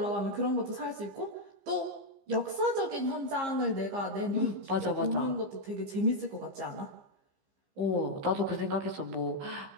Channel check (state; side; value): late; left; 15 ms